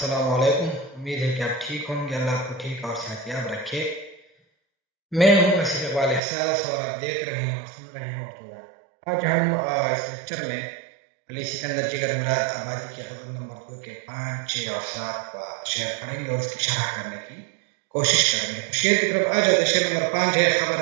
علیکم۔ امید ہے کہ آپ ٹھیک ہوں گے، اللہ آپ کو ٹھیک اور صحتیاب رکھے۔ میں ہوں وسیع اقبال احساس اور آپ دیکھ رہے ہیں اور سن رہے ہیں اردو گان۔ آج ہم اس لیکچر میں علی سکندر جگر مراد آبادی کی غزل نمبر 2 کے 5، 6 اور 7 شعر پڑھیں گے اور اس کی شرح کرنے کی کوشش کریں گے۔ تو شعر کی طرف آ جاتے۔ شعر نمبر 5 ہے:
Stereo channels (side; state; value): left; drops out; at 6.2 s